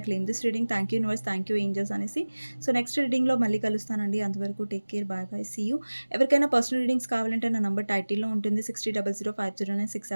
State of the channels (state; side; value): inverted; both; correlation -1.00